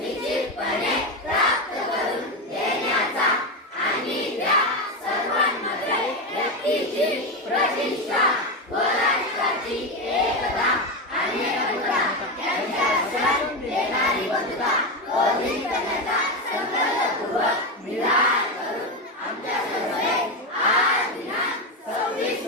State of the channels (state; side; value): normal; both; correlation 0.13